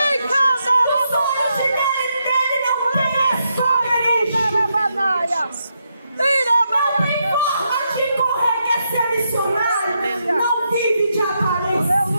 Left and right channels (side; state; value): both; inverted; correlation -0.81